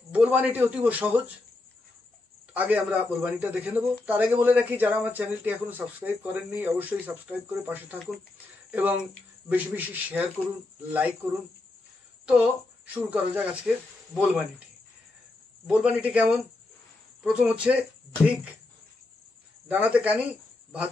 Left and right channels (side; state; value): right; quieter; 3.1 dB